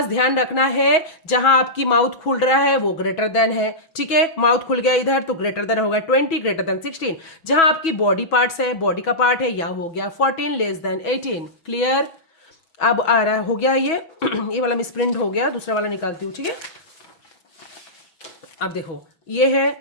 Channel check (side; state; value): right; late; 6.1 ms